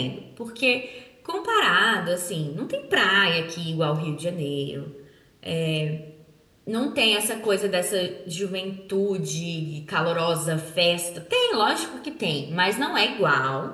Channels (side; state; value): both; identical; correlation 1.00